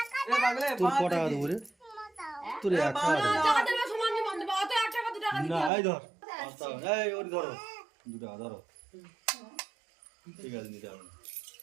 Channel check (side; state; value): left; drops out; at 5.7 s